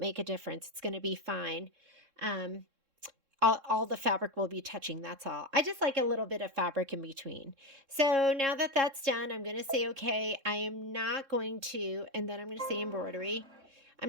a difference. It's going to be fine. All the fabric will be touching, that's all. I just like a little bit of fabric in between. So now that that's done, I'm going to say, okay, I am not going to, and then I'm going to say embroidery. I'm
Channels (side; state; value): left; late; 3.6 ms